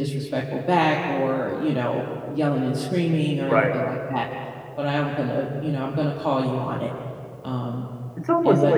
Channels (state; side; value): identical; both; correlation 1.00